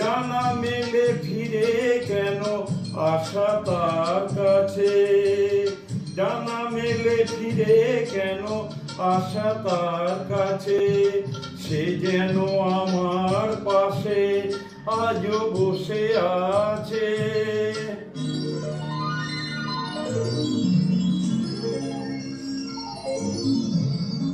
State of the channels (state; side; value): identical; both; correlation 1.00